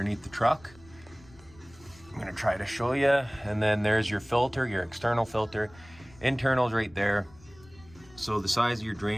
the truck. I'm gonna try to show you. And then there's your filter, your external filter. Internal's right there. So the size of your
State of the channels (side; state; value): left; noise; rumble, 24 dB below the sound